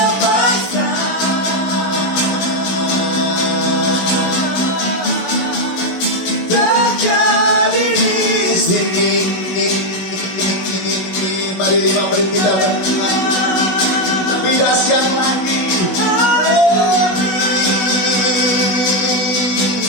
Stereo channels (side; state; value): right; late; 16 ms